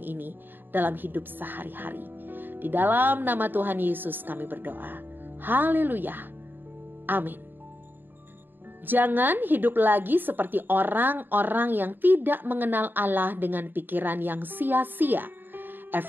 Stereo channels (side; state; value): left; late; 0.093 ms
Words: dalam hidup sehari-hari. Di dalam nama Tuhan Yesus kami berdoa. Haleluya. Amin. Jangan hidup lagi seperti orang-orang yang tidak mengenal Allah dengan pikiran yang sia-sia.